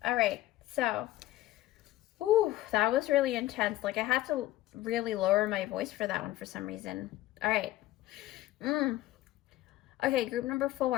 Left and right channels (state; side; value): quieter; right; 15.6 dB